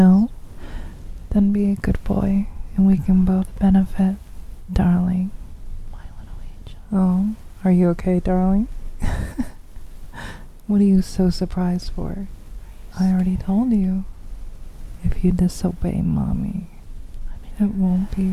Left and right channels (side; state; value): both; identical; correlation 1.00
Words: Then be a good boy and we can both benefit, darling. My little angel. Oh, are you okay, darling? What are you so surprised for? I already told you. If you disobey Mommy, it won't